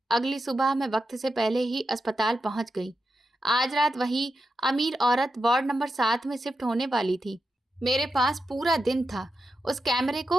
अगली सुबह मैं वक्त से पहले ही अस्पताल पहुंच गई। आज रात वही अमीर औरत वार्ड नंबर 7 में शिफ्ट होने वाली थी। मेरे पास पूरा दिन था उस कैमरे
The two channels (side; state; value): both; normal; correlation 0.88